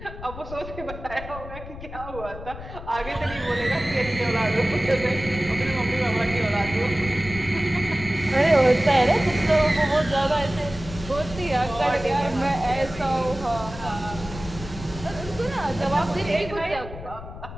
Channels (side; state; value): left; noise; rumble, 12 dB below the sound